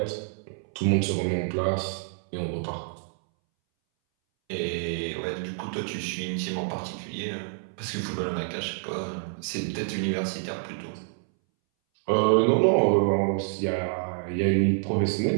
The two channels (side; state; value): left; silent; 60 dB below the other